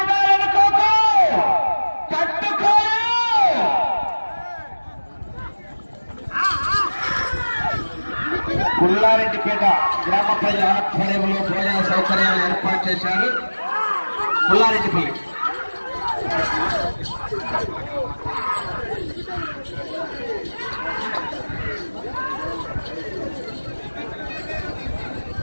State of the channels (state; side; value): inverted; both; correlation -1.00